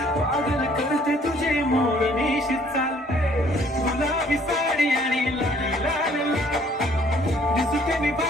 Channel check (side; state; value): both; normal; correlation 0.60